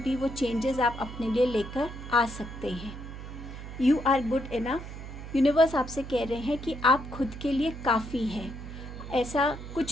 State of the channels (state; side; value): noise; right; hum, 10 dB below the sound